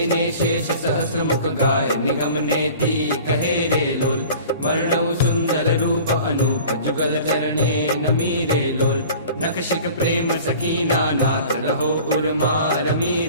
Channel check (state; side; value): inverted; both; correlation -0.43